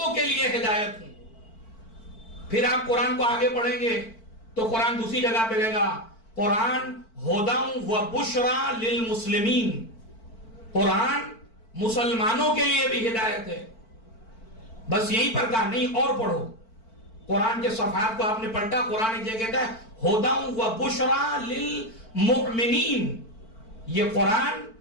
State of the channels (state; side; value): late; right; 4.5 ms